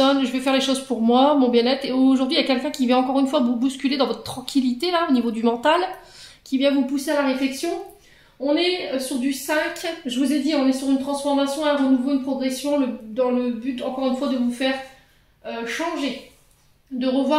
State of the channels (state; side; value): identical; both; correlation 1.00